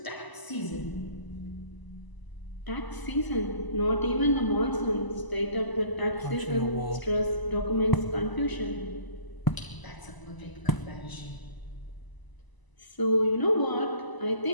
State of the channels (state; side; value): late; right; 1.0 ms